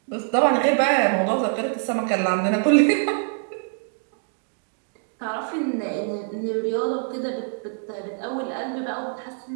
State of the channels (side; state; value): left; silent; 62 dB below the other